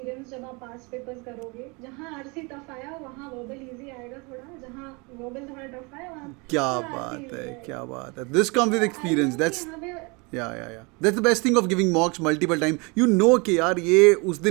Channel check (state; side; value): quieter; left; 29.1 dB